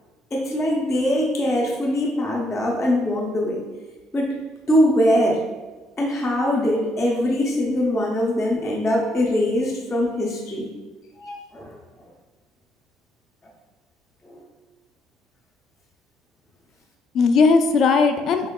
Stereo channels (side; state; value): both; normal; correlation 0.75